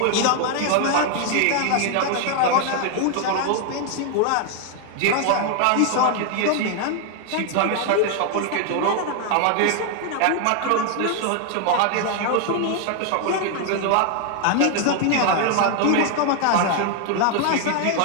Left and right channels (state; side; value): different; both; correlation 0.00